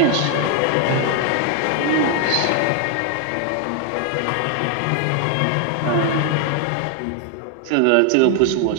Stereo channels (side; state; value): both; different; correlation 0.00